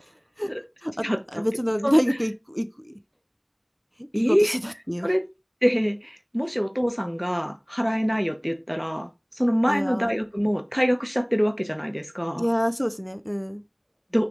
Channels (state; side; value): identical; both; correlation 1.00